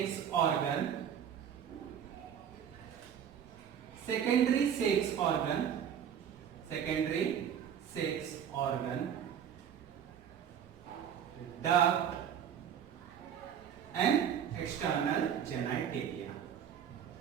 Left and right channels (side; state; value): left; quieter; 8.7 dB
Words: organ, secondary sex organ, duct and external genitalia.